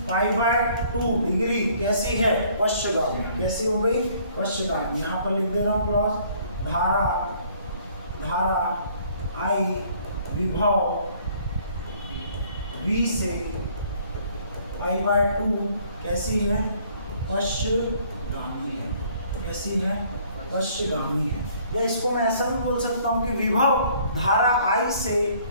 π/2 डिग्री कैसी है, पश्चगामी। कैसी हो गई, पश्चगामी। यहाँ पर लिख दे रहा हूँ क्लॉज, धारा I विभव V से π/2 कैसी है, पश्चगामी है। कैसी है, पश्चगामी है। या इसको मैं ऐसा भी बोल सकता हूँ कि विभव धारा I से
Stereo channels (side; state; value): both; inverted; correlation -0.59